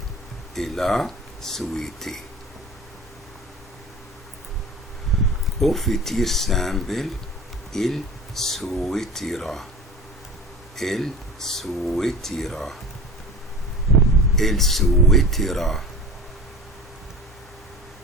Il a souhaité. Au futur simple, il souhaitera. Il souhaitera. Il souhaitera.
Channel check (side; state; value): both; normal; correlation 0.37